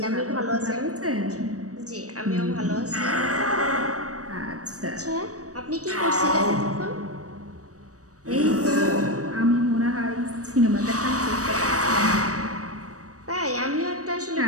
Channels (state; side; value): late; left; 0.66 ms